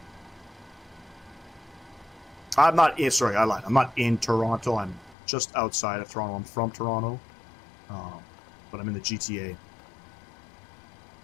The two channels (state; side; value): drops out; right; at 5.2 s